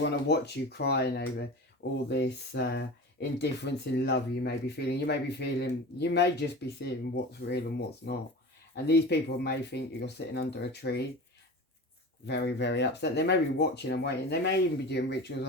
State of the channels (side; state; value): both; normal; correlation 0.33